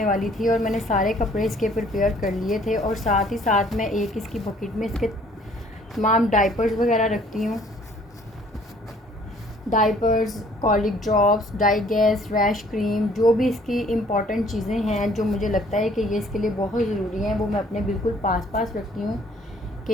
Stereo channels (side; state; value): both; normal; correlation 0.58